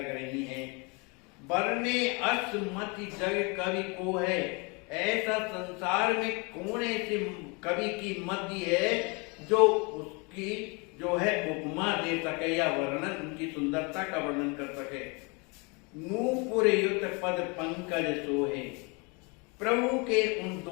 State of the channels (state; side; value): quieter; right; 30.5 dB